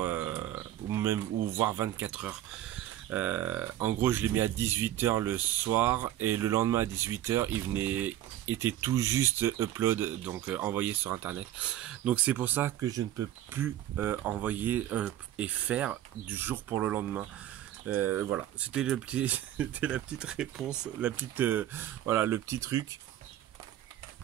ou voire 24 heures. En gros, je l'ai mis à 18h le soir et le lendemain à 18h, était tout juste upload, donc envoyé sur internet. Donc c'est pour ça que je ne peux plus envoyer et faire du jour pour le lendemain. Voilà, c'était la petite réponse, voilà, le petit truc.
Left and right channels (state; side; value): quieter; left; 12.7 dB